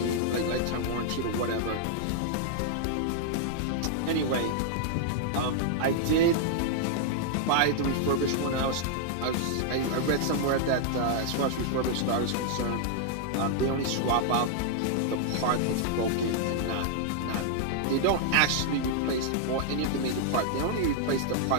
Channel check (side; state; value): both; different; correlation -0.01